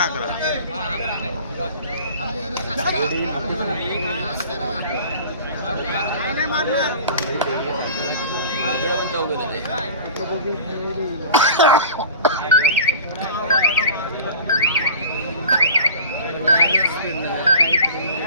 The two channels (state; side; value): inverted; both; correlation -0.40